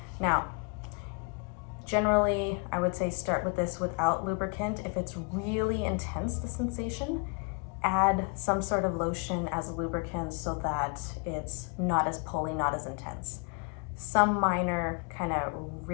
Now, generally, I would say start with this without lubricant. If it's really intense, the sensation, add some sort of lotion as a lubricant so that it's not as pulley, not as intense. Some minor kind of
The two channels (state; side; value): quieter; right; 34.3 dB